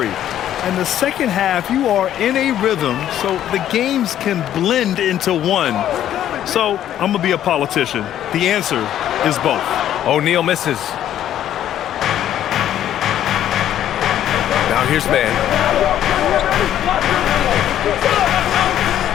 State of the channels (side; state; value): right; quieter; 11.3 dB